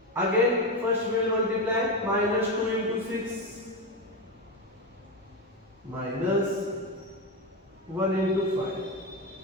Again, first we will multiply minus 2 into 6 minus 1 into 5.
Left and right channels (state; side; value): normal; both; correlation 0.14